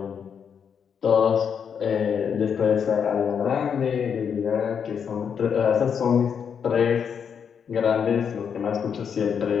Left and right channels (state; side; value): quieter; right; 7.2 dB